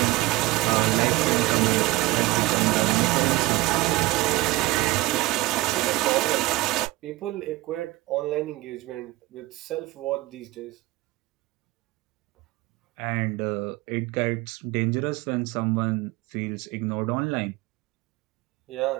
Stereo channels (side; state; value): left; quieter; 19.2 dB